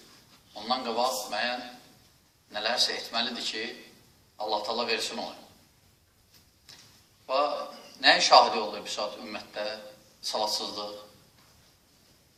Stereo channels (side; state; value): both; identical; correlation 1.00